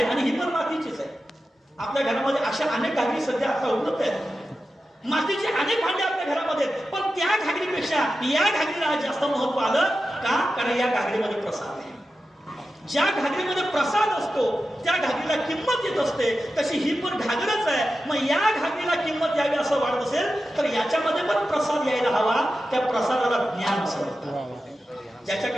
आणि ही पण मातीचीच आहे. आपल्या घरामध्ये अशा अनेक घागरी सध्या आता उपलब्ध आहेत. मातीचे अनेक भांडे आपल्या घरामध्ये आहेत, पण त्या घागरीपेक्षा या घागरीला जास्त महत्व आलं का? कारण या घागरीमध्ये प्रसाद आहे. ज्या घागरीमध्ये प्रसाद असतो त्या घागरीला किंमत येत असते. तशी ही पण घागरच आहे. मग या घागरीला किंमत यावी असं वाटत असेल तर याच्यामध्ये पण प्रसाद यायला हवा. त्या प्रसादाला ज्ञान असतं.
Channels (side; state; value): both; normal; correlation 0.92